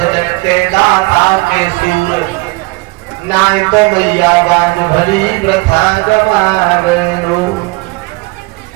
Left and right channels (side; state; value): left; quieter; 24.9 dB